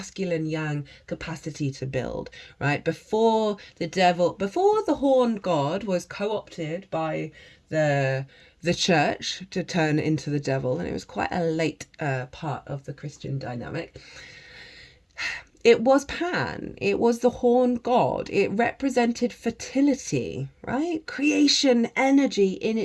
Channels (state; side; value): identical; both; correlation 1.00